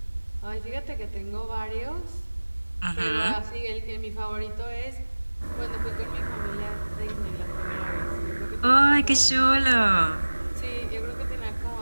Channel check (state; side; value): inverted; both; correlation -1.00